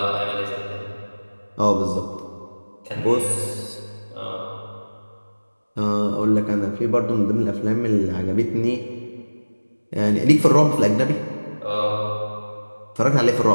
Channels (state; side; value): inverted; both; correlation -1.00